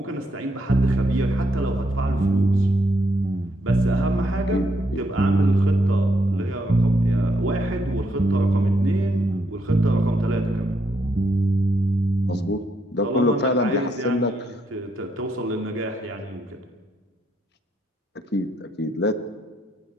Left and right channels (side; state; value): both; normal; correlation 0.77